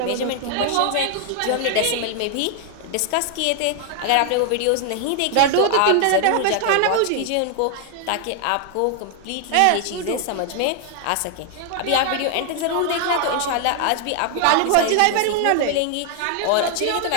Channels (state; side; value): different; both; correlation 0.00